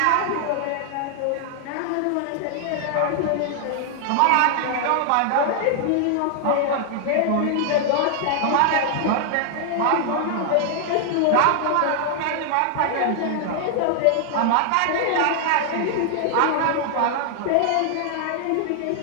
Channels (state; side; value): different; both; correlation 0.00